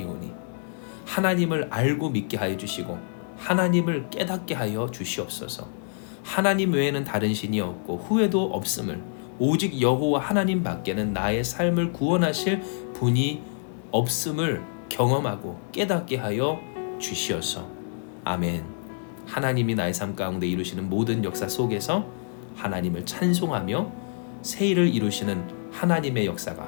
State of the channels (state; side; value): silent; right; digital silence